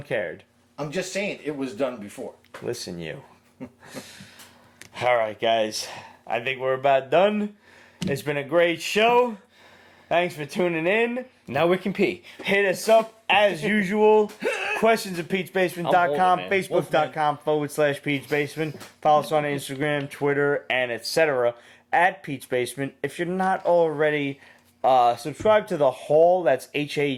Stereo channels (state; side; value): identical; both; correlation 1.00